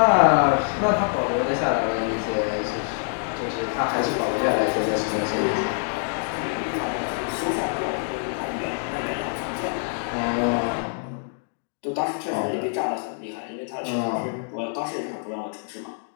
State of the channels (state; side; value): silent; right; 62 dB below the other